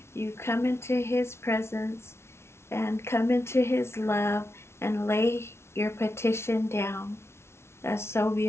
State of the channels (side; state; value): right; late; 0.13 ms